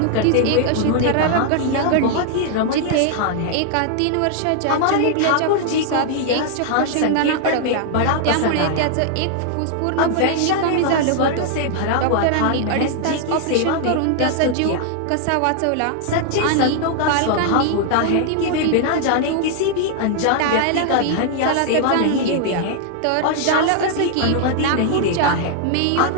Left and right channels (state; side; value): different; both; correlation 0.00